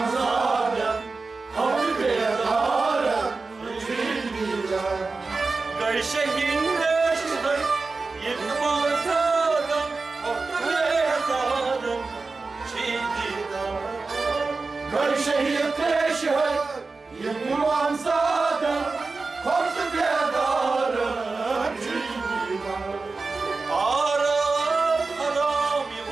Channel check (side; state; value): left; quieter; 4.0 dB